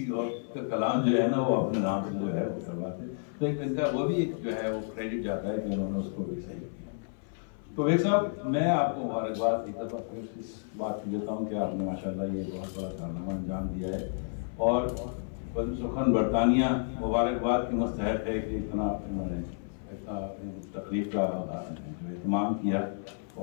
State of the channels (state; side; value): silent; right; 57 dB below the other